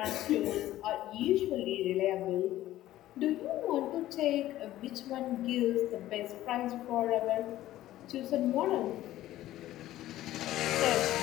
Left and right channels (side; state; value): right; quieter; 14.5 dB